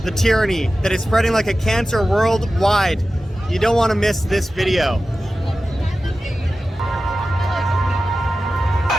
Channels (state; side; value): normal; both; correlation 0.94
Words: the tyranny that is spreading like a cancer worldwide. You don't want to miss this video.